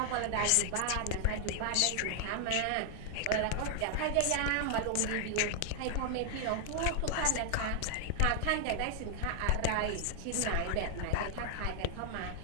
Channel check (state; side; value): different; both; correlation 0.00